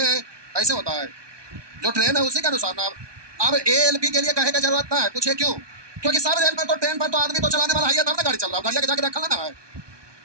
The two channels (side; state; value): left; late; 1.2 ms